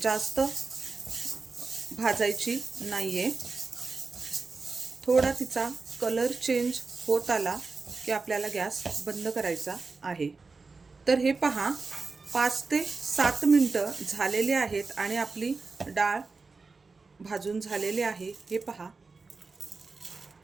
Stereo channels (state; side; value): quieter; left; 4.2 dB